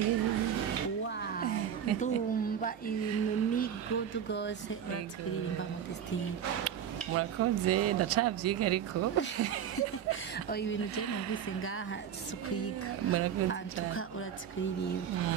Wow, ndumva ibintu ni good rwose urazi kuririmba mu Destin. Murakoze ndacabyiga ariko ibintu je numvise ngaha sukwiga antuka urazi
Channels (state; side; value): quieter; left; 8.8 dB